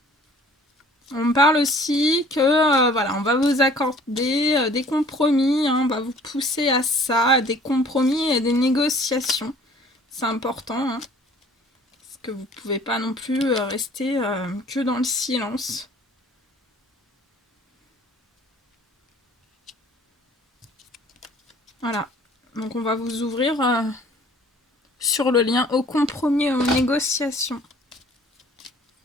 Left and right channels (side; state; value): both; normal; correlation 0.52